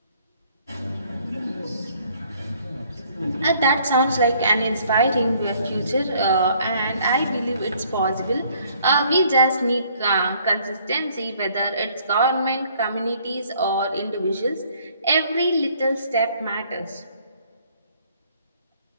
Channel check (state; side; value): inverted; both; correlation -0.61